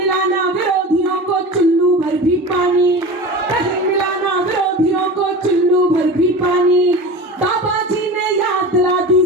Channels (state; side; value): normal; both; correlation 0.32